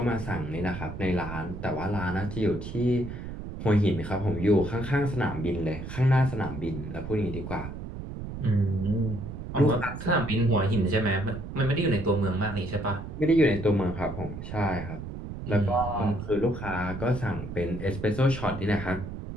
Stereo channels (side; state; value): right; noise; rumble, 8 dB below the sound